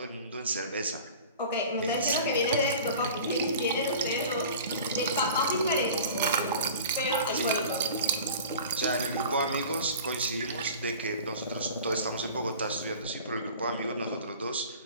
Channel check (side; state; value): both; inverted; correlation -0.40